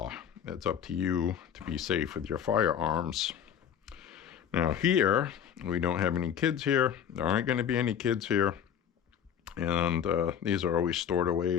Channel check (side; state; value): right; quieter; 8.8 dB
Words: It's up to you to be safe with your firearms. Now here, we don't have any kids here. There aren't going to be any kids here. And these are always stored